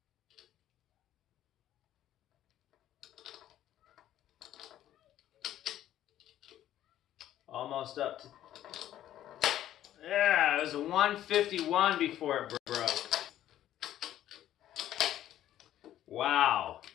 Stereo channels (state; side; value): quieter; right; 12.3 dB